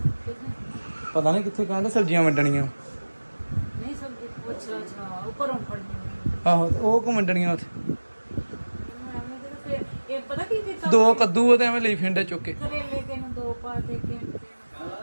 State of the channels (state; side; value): inverted; both; correlation -1.00